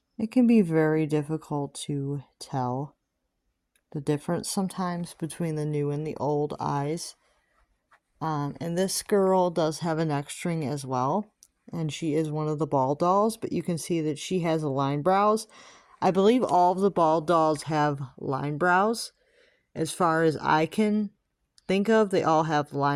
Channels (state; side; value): identical; both; correlation 1.00